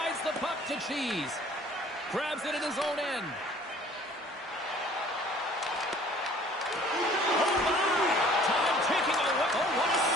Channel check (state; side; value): normal; both; correlation 0.52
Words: the puck to Cheese. Grabs it at his own end. Oh, my! Time ticking away. Oh, what a